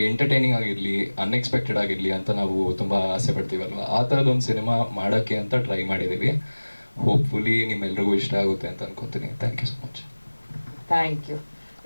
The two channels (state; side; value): inverted; both; correlation -1.00